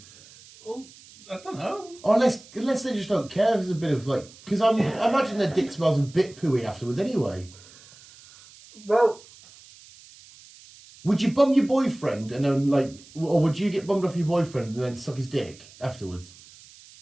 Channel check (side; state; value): right; noise; hiss, 22 dB below the sound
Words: Well, I don't know. Or unless they just don't care. There's a bit of like... Because I imagine their dick smells a bit pooey afterwards anyway. Well... Would you bum your boyfriend and then like... Or would you get bummed off your boyfriend and then suck his dick afterwards?